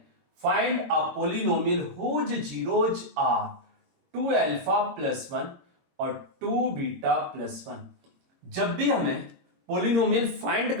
Find a polynomial whose zeros are 2 alpha plus 1 और 2 बीटा प्लस 1। जब भी हमें पोलिनोमियल फाइंड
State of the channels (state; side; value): late; left; 22 ms